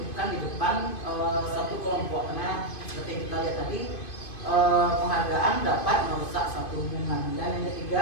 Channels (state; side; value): late; right; 2.5 ms